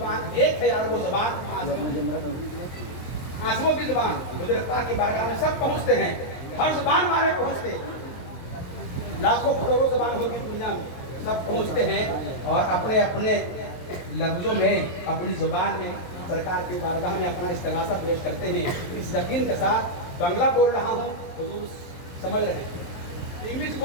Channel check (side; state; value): right; late; 23 ms